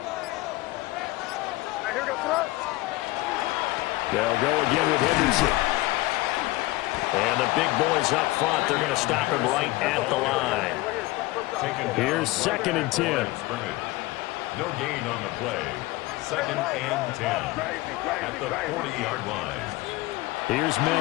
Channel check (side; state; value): right; quieter; 19.8 dB